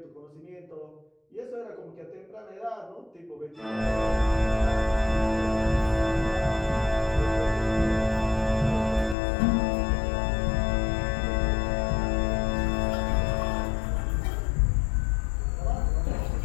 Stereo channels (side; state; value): right; drops out; at 9.2 s